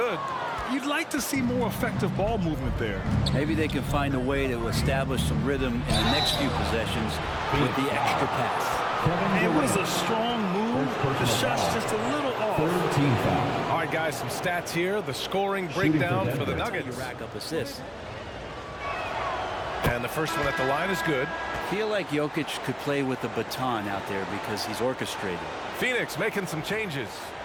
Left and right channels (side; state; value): both; identical; correlation 1.00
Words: You'd like to see more effective ball movement there. Maybe they can find a way to establish some rhythm in the next few possessions with the extra pass. It was a strong move. The shot's just a little off. All right, guys, some stats here. The scoring breakdown for the Nuggets. You rack up assists. And the first one at the line is good. I feel like Jokic could play with the baton out there because he's orchestrated. Phoenix making some changes.